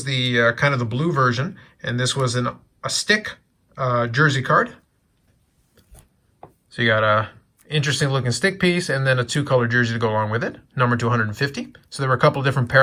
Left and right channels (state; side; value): identical; both; correlation 1.00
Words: the kind of the blue version. And this was a stick jersey card. So you got a interesting looking stick piece and then a two-color jersey to go along with it, numbered to 150. So there were a couple of different